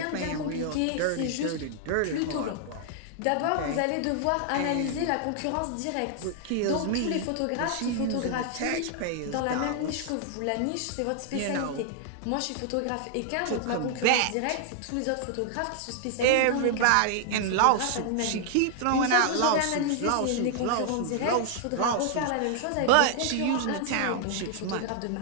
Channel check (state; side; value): different; both; correlation 0.00